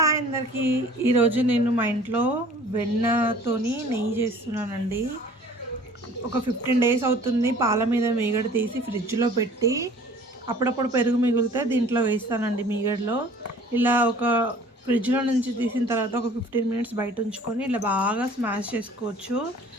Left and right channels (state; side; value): normal; both; correlation 0.50